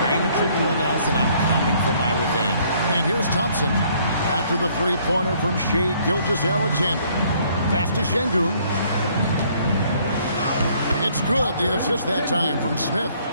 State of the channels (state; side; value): inverted; both; correlation -0.63